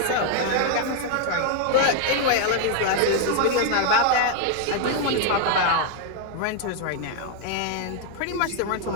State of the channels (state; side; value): different; both; correlation 0.00